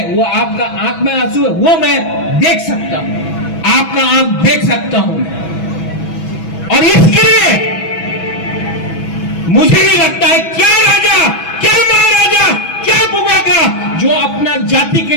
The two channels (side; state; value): right; late; 6.1 ms